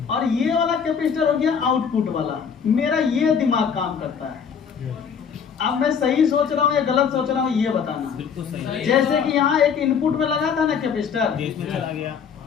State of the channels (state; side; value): quieter; right; 6.9 dB